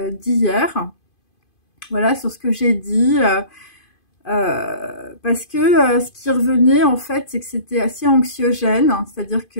d'hier, voilà, sur ce que j'ai dit. Parce que ce qui revenait en fait, c'est que c'était assez anxiogène, hein, c'est-à-dire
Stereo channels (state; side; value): late; right; 2.5 ms